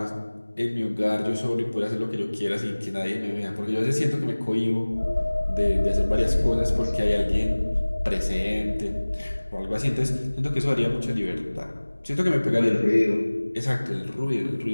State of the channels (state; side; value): inverted; both; correlation -1.00